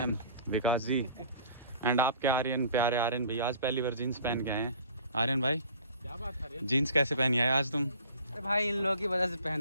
विकास जी एंड आपके आर्यन, प्यारे आर्यन भाई आज पहली बार जीन्स पहन के आए हैं। आर्यन भाई क्या बात है, जीन्स कैसे पहनी आए आज तुम? अरे भाई इन लोगों की वजह से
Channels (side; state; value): both; inverted; correlation -0.48